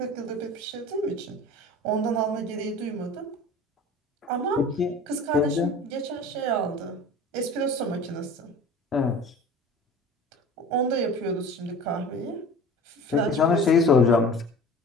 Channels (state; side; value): normal; both; correlation 0.40